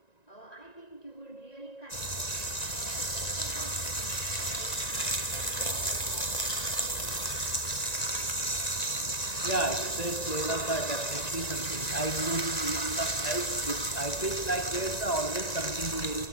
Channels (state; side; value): late; right; 1.9 ms